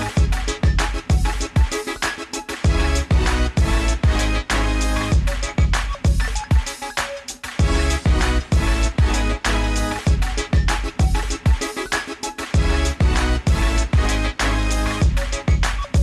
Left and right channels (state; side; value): identical; both; correlation 1.00